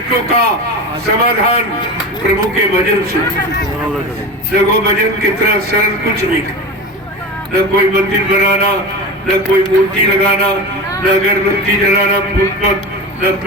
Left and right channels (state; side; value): normal; both; correlation 0.28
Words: का समाधान प्रभु के भजन से। देखो भजन कितना सरल, कुछ नहीं, न कोई मंदिर बनाना, न कोई मूर्ति लगाना, न अगरबत्ती जलाना, पुष्प, न